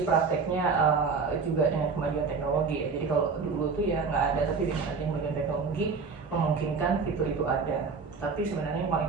prakteknya juga dengan kemajuan teknologi ya. Jadi kalau dulu tuh ya nggak ada, tapi dengan adanya kemajuan teknologi memungkinkan fitur itu ada. Tapi sebenarnya yang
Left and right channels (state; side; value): quieter; left; 4.9 dB